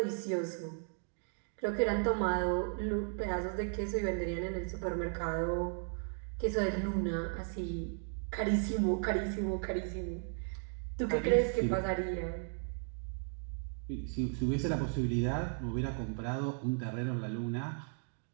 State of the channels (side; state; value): left; silent; 54 dB below the other